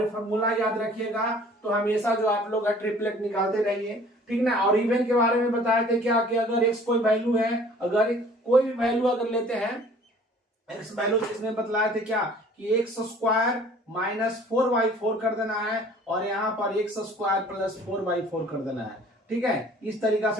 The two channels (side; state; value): both; normal; correlation 0.52